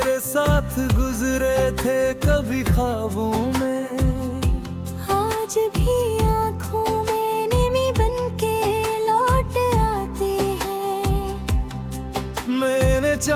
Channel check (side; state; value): both; identical; correlation 1.00